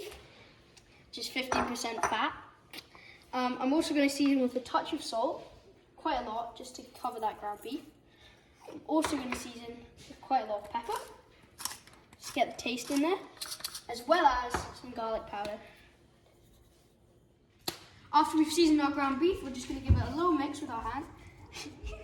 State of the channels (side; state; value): both; identical; correlation 1.00